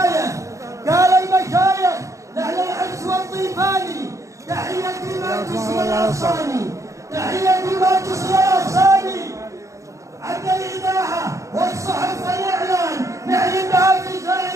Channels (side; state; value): left; late; 0.15 ms